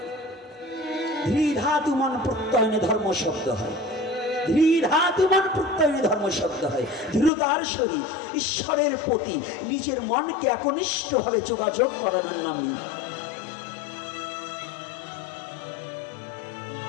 ধৃধাতু মন প্রত্যয়নে ধর্ম শব্দ হয়, ধৃধাতু মন প্রত্যয়নে ধর্ম শব্দ হয়। দৃঢ়তার সহিত ঈশ্বরের প্রতি নিজের মনকে একনিষ্ঠভাবে যোগাযোগ করানোর নামই।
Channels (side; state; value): right; drops out; at 7.3 s